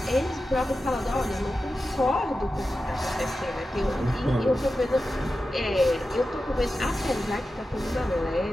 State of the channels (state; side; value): normal; both; correlation 0.92